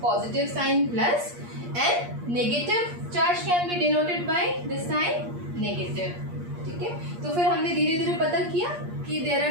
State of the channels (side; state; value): left; late; 8.5 ms